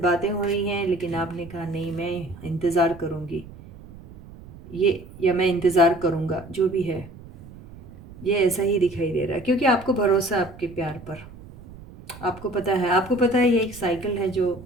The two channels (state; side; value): noise; right; rumble, 18 dB below the sound